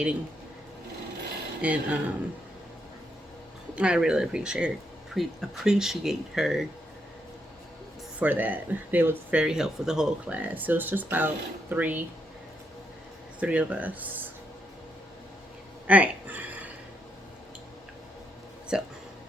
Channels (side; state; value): both; normal; correlation 0.78